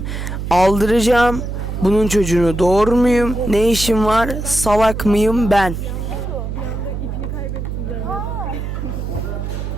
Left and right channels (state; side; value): noise; right; hum, 5 dB below the sound